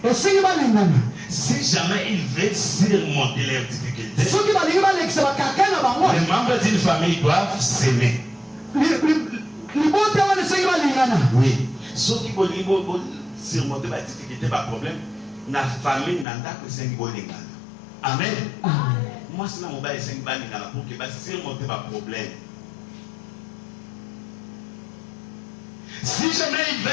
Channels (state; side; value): drops out; right; at 16.2 s